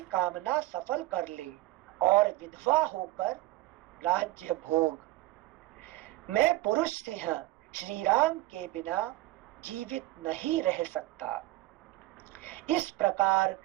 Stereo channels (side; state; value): left; quieter; 18.2 dB